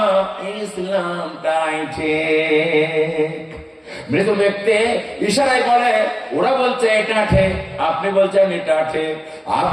ইসলামটাই ঠিক। মৃত ব্যক্তি ইশারায় বলে, ওরা বলছে এটা ঠিক, আপনি বলছেন এটা ঠিক,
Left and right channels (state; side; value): identical; both; correlation 1.00